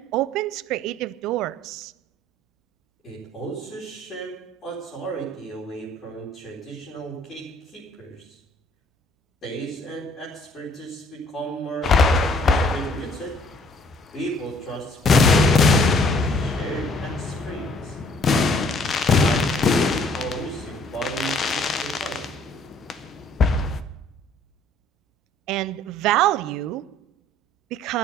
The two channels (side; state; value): both; normal; correlation 0.59